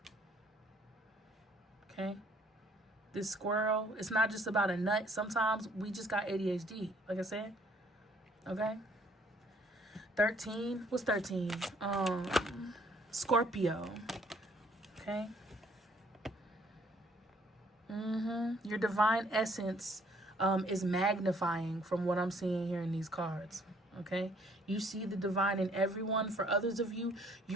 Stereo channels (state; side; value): normal; both; correlation 0.62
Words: Okay? This squirrel, it's not just about a nut. Sometimes we just got ADHD, like I said. Okay? 13. What's 13? Scorpio. Okay? Your divine essence is magnifying from what I'm seeing here in these cards. Okay? You see the divine in everyone. For others of you,